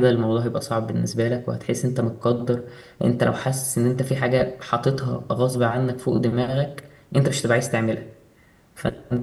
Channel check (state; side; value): identical; both; correlation 1.00